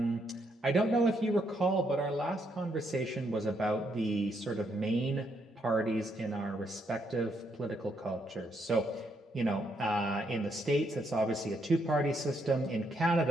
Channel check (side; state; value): both; normal; correlation 0.76